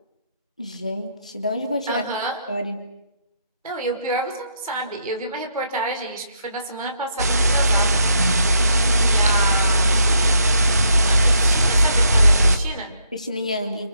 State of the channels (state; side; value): inverted; both; correlation -0.76